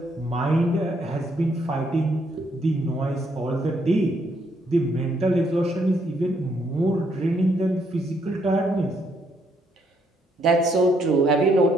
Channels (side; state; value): both; normal; correlation 0.72